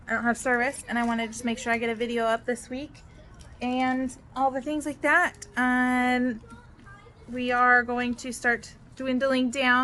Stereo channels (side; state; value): both; identical; correlation 1.00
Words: I don't have service and I want to just make sure I get a video up this week and all the things like that. And we are going to start dwindling